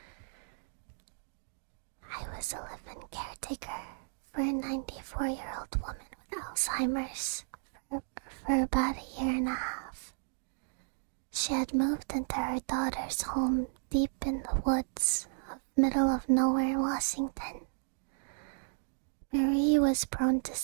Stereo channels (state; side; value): silent; left; digital silence